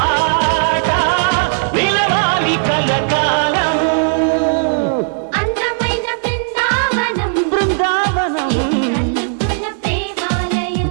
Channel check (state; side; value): silent; left; digital silence